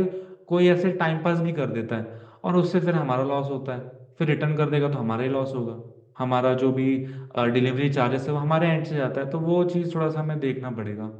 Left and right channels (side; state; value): both; identical; correlation 1.00